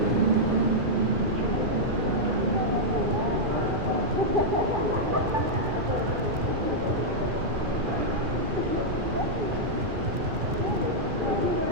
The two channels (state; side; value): late; left; 2.4 ms